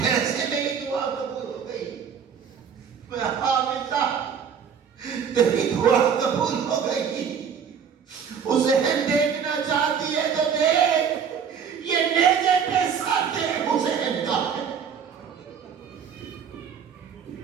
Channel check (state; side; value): quieter; left; 7.2 dB